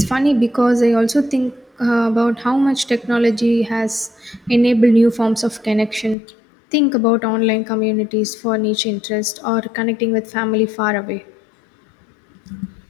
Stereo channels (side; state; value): right; drops out; at 6.2 s